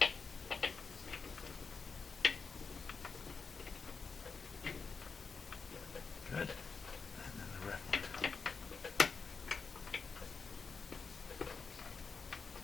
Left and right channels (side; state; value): right; quieter; 5.0 dB